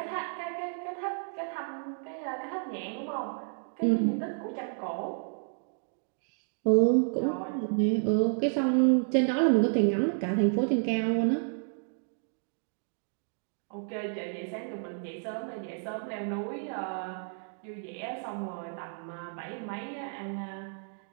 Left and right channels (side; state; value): left; silent; 57 dB below the other